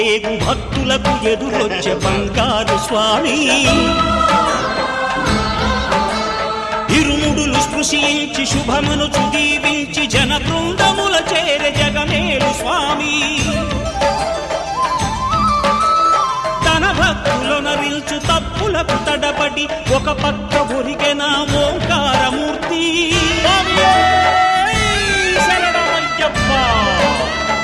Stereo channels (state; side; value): identical; both; correlation 1.00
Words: భక్తులకు ఎదురొచ్చే బంగారు స్వామి ఇరుముడులు స్పృశించి శుభమును చుదీవించి జన బృందముల చేరే జగమేలు స్వామి తన భక్తులొనరిల్చు తప్పులకు తడబడి ఒక పక్క ఒరిగెన ఓంకారమూర్తి